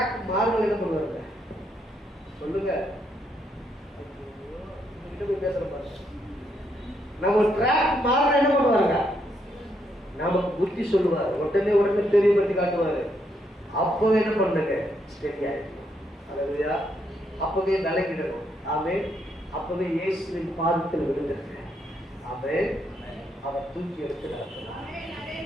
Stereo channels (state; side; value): normal; both; correlation 0.76